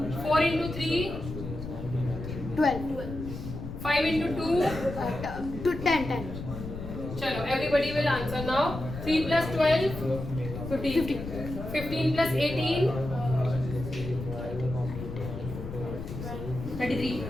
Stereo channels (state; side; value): noise; left; rumble, 8 dB below the sound